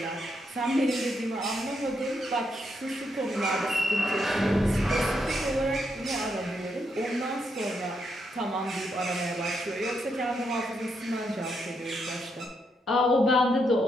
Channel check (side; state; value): both; normal; correlation 0.79